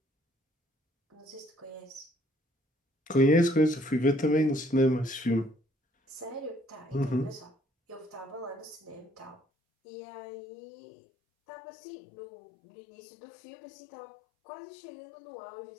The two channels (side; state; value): right; drops out; at 9.4 s